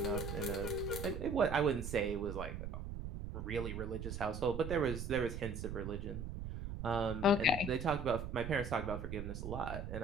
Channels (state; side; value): noise; right; rumble, 6 dB below the sound